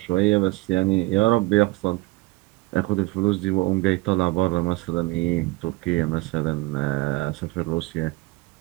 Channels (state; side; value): quieter; left; 22.3 dB